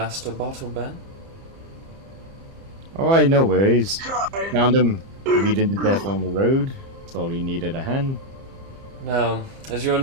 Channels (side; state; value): left; late; 30 ms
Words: Bottleben. Oh, I no worries. Found him bleeding to death on the road. Thought he needed a hand. Now, as you are